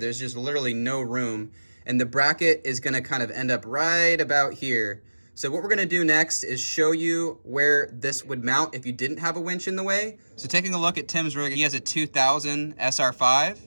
just literally no room, and the bracket is gonna kind of end up right about here. So what we're gonna do next is show you where this would mount if you didn't have a winch in the way. So taking a look at Tim's rig, he has a 2000 SR5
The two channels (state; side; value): inverted; both; correlation -1.00